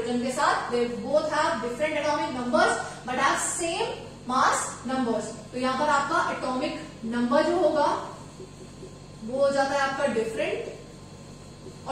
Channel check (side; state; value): both; identical; correlation 1.00